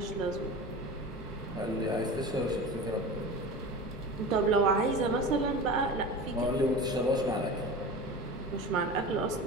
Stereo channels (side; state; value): both; normal; correlation 0.32